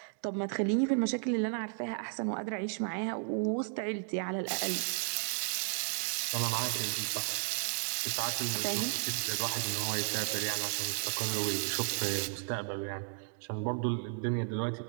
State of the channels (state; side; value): silent; left; 55 dB below the other